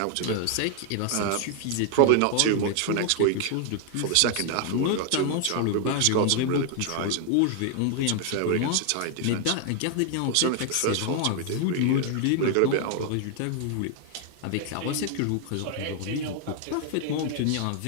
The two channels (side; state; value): both; different; correlation 0.00